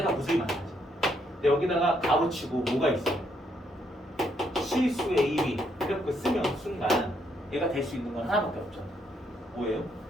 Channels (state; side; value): normal; both; correlation 0.74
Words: 무수히 많아지. 근데 여기다가 값붙이고 뭐가 있어? 실수 a, b 이렇게 쓰면 순간 얘가 될 수 있는 건 하나밖에 없잖아. 뭐예요?